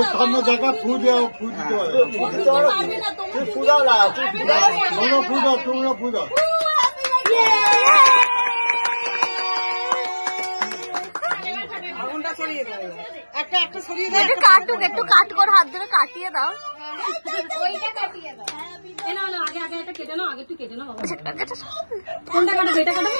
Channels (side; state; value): both; inverted; correlation -1.00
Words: সামনে জায়গা ফু দাও, ফু দিতে হবে। তুই ফু দাও না, তোমরা ফু দাও, তোমরা ফু দাও। আগুনটা সরিয়ে দাও, একটা একটা সরিয়ে দাও। একটু কাটুক, একটু কাট করে হাত ধরে কাটিয়ে দাও। এ না না, আগে আগে এটা কেটে নাও, আগে একটু কেটে নাও বাবা। কোনটা কাটাবে? এটা কাটাবে?